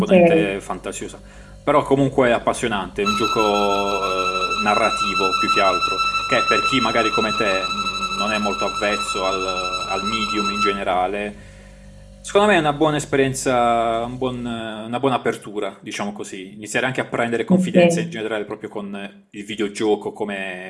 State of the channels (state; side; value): identical; both; correlation 1.00